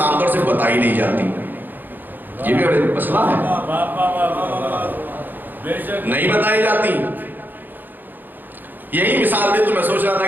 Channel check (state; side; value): late; left; 0.089 ms